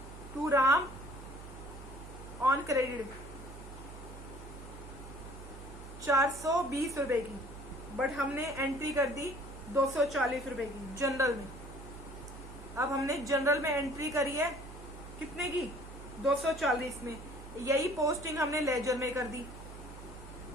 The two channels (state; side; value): noise; right; hum, 13 dB below the sound